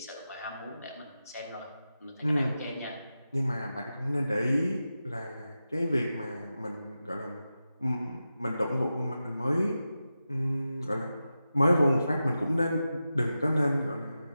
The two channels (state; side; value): inverted; both; correlation -0.92